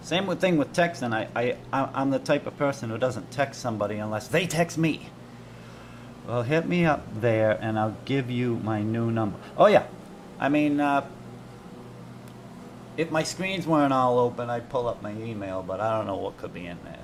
Same thing with texting. I'm the type of person who doesn't text somebody unless they text me. Well, hit me up there and I'll give you my new number. Oh, yeah. I mean, if my screens weren't all open, I'd pull up my email, but I don't know what could be in there,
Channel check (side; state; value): both; identical; correlation 1.00